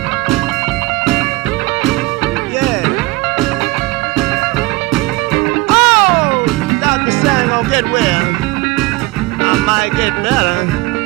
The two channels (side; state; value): left; quieter; 21.6 dB